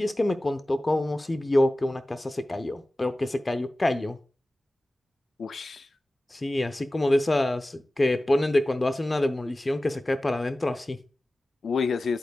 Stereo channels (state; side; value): normal; both; correlation 0.96